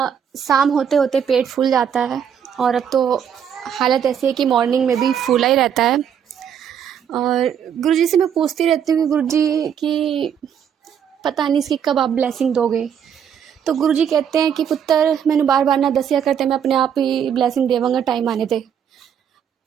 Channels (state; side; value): quieter; left; 8.4 dB